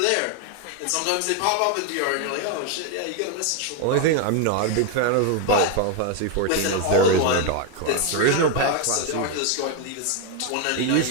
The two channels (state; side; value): different; both; correlation 0.01